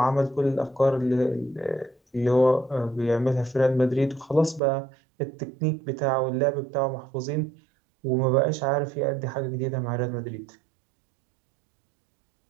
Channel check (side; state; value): left; drops out; at 4.6 s